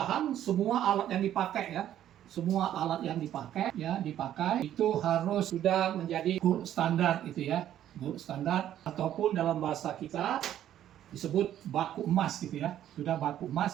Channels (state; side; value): quieter; left; 11.4 dB